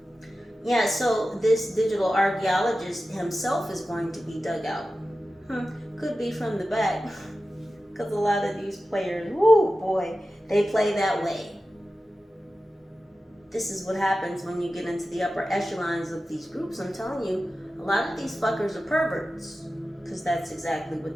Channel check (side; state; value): both; normal; correlation 0.94